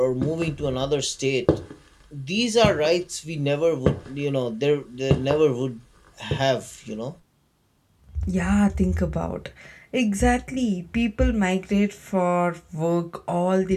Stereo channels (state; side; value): identical; both; correlation 1.00